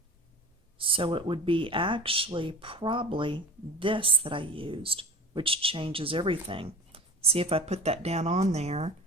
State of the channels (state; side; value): normal; both; correlation 0.37